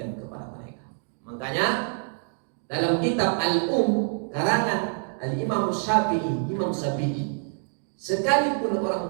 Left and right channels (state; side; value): silent; left; 56 dB below the other